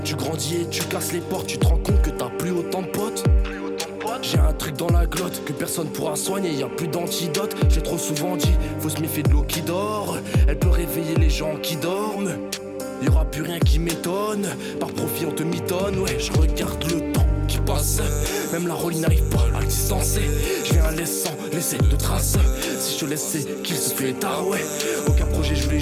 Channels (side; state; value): both; identical; correlation 1.00